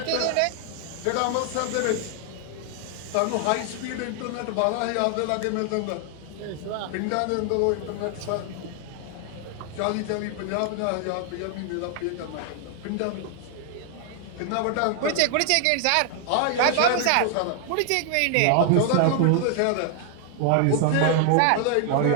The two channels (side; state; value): both; different; correlation 0.00